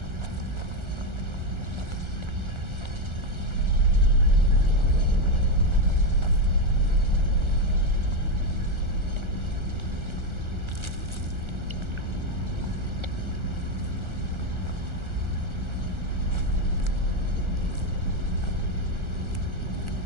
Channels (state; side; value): late; left; 1.4 ms